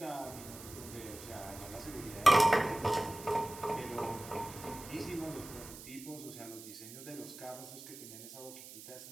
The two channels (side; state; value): right; noise; hiss, 14 dB below the sound